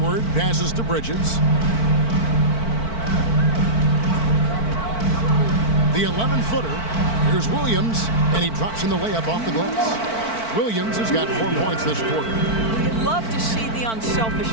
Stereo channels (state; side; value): late; right; 4.5 ms